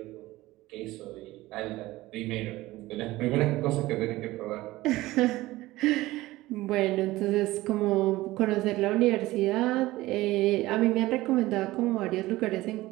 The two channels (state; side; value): quieter; left; 18.1 dB